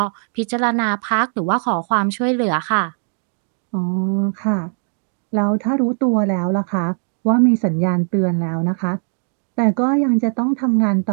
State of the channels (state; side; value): silent; left; 56 dB below the other